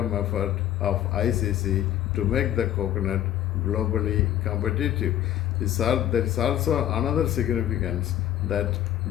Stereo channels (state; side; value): quieter; right; 12.0 dB